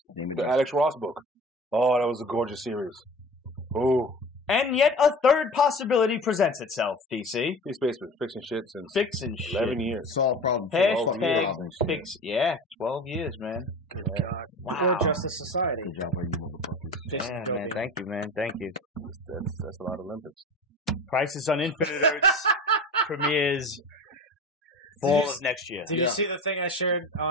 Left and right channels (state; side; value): normal; both; correlation 0.35